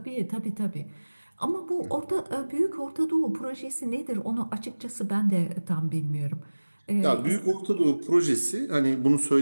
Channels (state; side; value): inverted; both; correlation -1.00